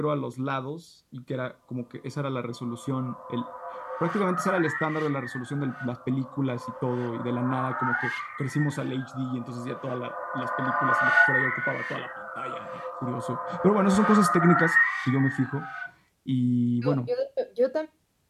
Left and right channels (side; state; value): both; identical; correlation 1.00